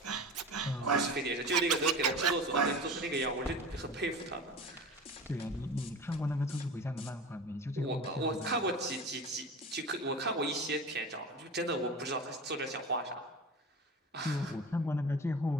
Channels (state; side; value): normal; both; correlation 0.33